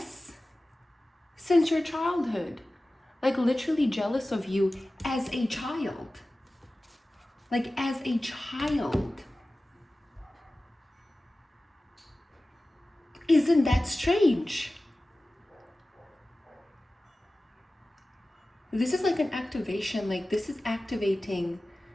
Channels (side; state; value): both; normal; correlation 0.96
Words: Since your childhood. Like literally jealous of you as a child. Like as a child. Isn't that strange? This is like an activation, like this is activating